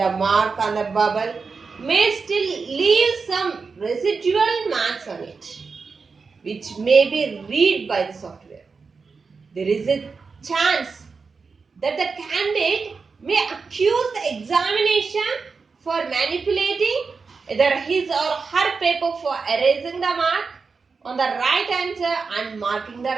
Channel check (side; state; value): left; quieter; 4.8 dB